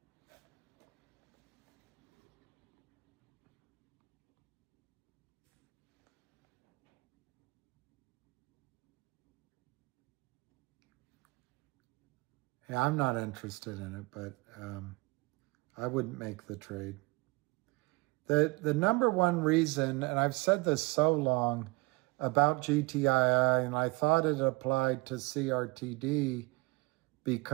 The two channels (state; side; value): quieter; left; 24.7 dB